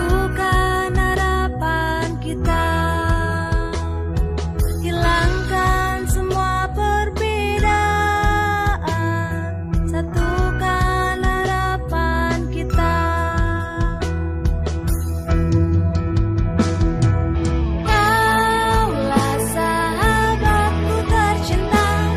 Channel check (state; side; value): identical; both; correlation 1.00